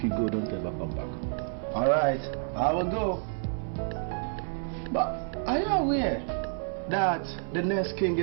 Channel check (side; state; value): left; silent; 58 dB below the other